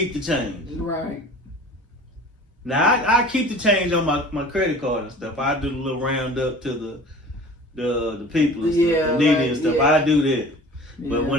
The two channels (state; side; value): normal; both; correlation 0.43